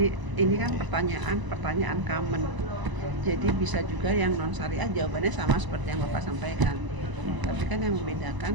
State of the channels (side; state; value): left; late; 1.0 ms